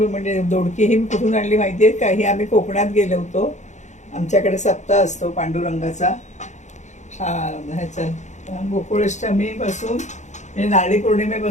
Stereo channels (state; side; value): late; right; 0.34 ms